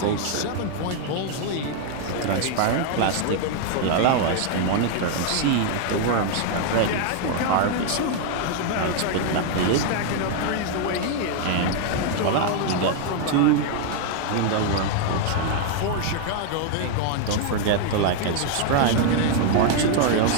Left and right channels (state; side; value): different; both; correlation 0.00